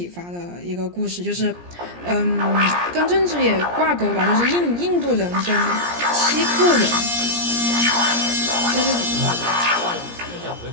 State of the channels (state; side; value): late; left; 17 ms